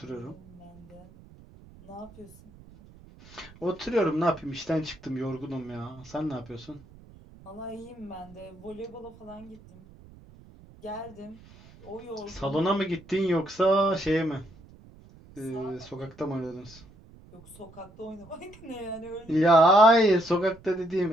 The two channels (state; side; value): noise; right; rumble, 22 dB below the sound